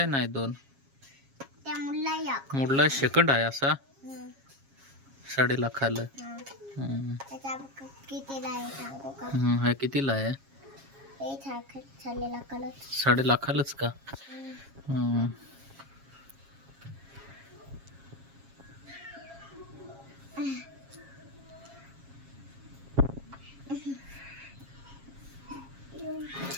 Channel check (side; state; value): left; late; 7.3 ms